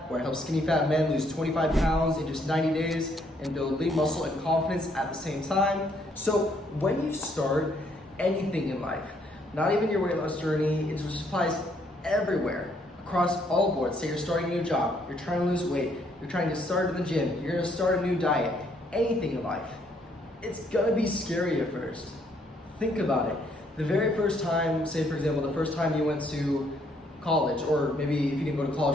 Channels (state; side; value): normal; both; correlation 0.69